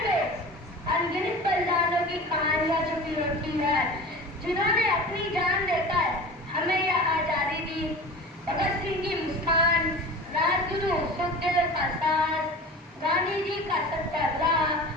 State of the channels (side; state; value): both; normal; correlation 0.35